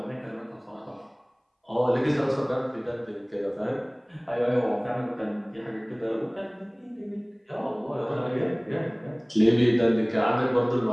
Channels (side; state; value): both; identical; correlation 1.00